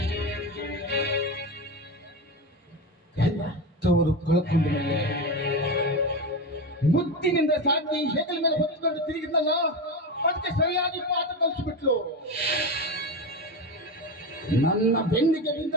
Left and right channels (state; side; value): normal; both; correlation 0.20